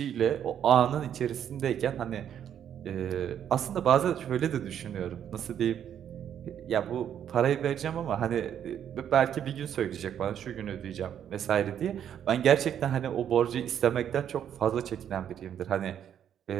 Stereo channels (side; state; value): left; quieter; 9.4 dB